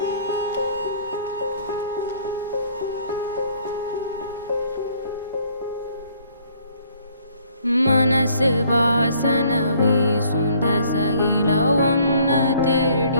மனசு வாசன வீசும் தசையில ஒன்ன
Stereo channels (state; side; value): inverted; both; correlation -0.61